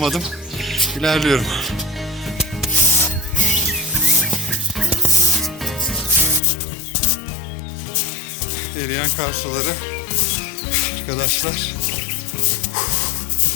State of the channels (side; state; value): right; drops out; at 6.4 s